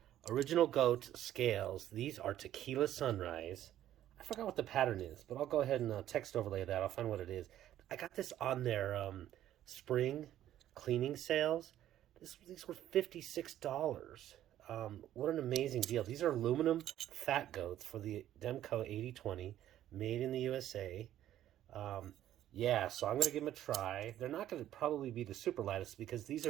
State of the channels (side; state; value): left; quieter; 12.3 dB